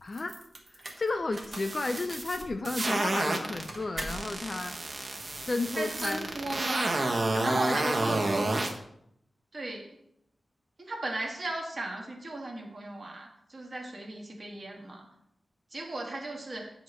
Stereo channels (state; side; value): normal; both; correlation 0.93